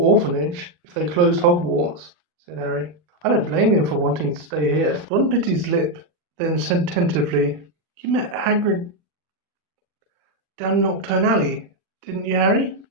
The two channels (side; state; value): left; late; 40 ms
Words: if they closed Hogwarts," said Harry. "I don't blame him for wanting to stay here." Ron bit his lip, then said tentatively, "You met Hagrid down Nocturne Alley, didn't you, Harry?"